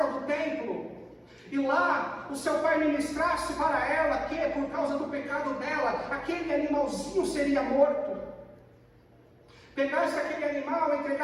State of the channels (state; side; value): identical; both; correlation 1.00